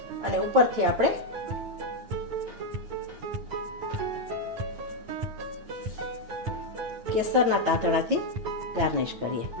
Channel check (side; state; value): left; late; 9.1 ms